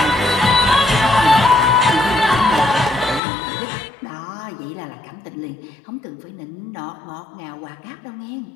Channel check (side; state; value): right; drops out; at 3.2 s